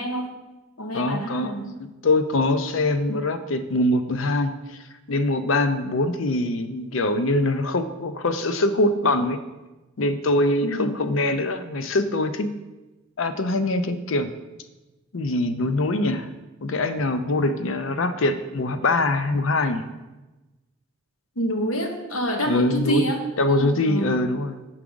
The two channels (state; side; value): normal; both; correlation 0.19